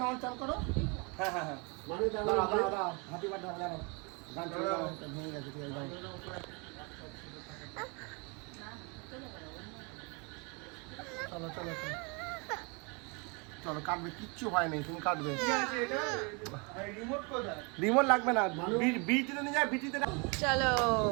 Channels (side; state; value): left; quieter; 31.5 dB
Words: অন চালু করো। হ্যাঁ মানে দাও হ্যাপি বার্থডে জানো গান চালিয়ে দাও। ভেঙে গেছে ঠিক আছে দাও। চলো চলো কাটবে, কিচ্ছু হয় নাই, তুমি কাটবে। রিমোট লাগবে না, বিটিতে নিয়ে যায়, বিটিতে। চলো